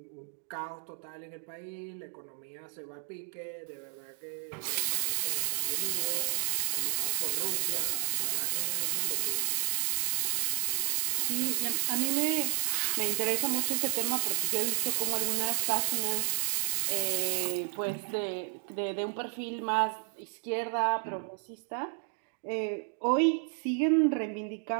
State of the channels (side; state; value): left; silent; digital silence